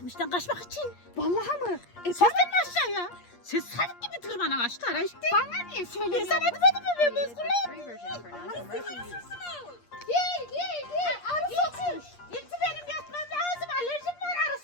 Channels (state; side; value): late; right; 8.5 ms